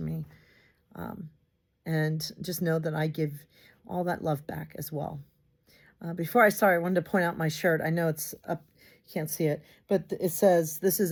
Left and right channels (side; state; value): both; identical; correlation 1.00